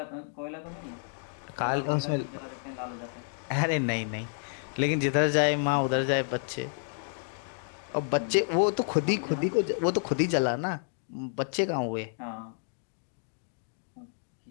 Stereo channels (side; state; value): right; silent; digital silence